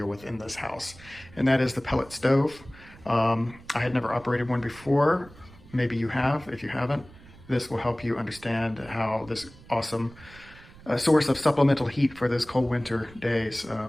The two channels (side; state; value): right; noise; rumble, 21 dB below the sound